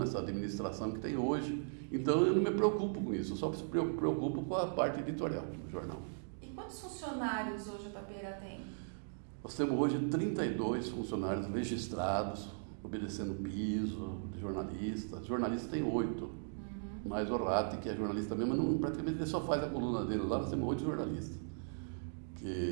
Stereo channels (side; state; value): left; silent; digital silence